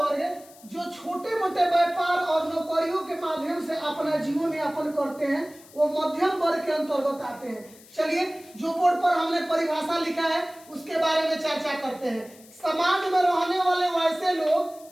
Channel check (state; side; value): noise; left; hiss, 23 dB below the sound